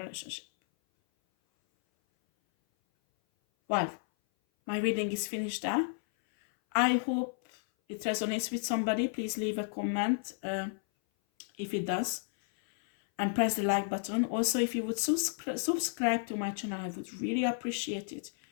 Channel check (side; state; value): right; silent; 56 dB below the other